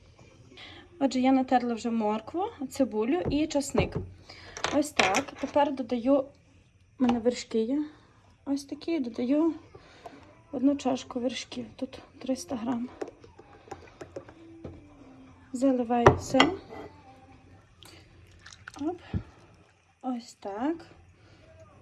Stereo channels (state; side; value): identical; both; correlation 1.00